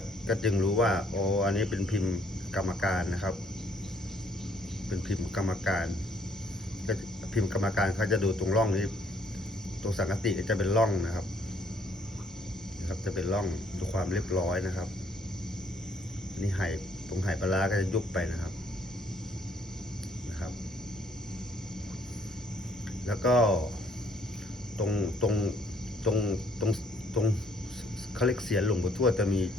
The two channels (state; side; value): normal; both; correlation 0.66